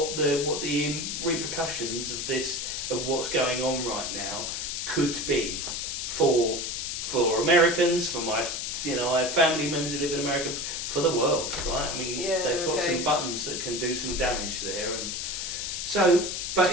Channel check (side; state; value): left; noise; hiss, 3 dB below the sound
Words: the repercussions of what's going on right now could be for Americans, for my, I have family members who live in America, for the world, right? I mean, Yeah, they've got okay. some buttons that can do some damage there, and so. But